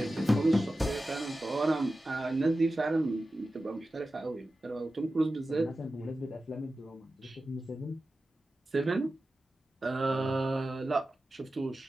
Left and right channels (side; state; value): both; normal; correlation 0.94